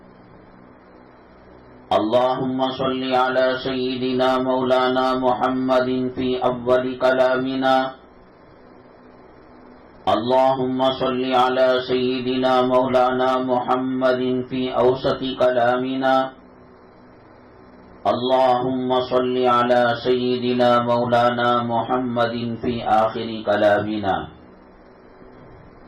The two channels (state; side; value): identical; both; correlation 1.00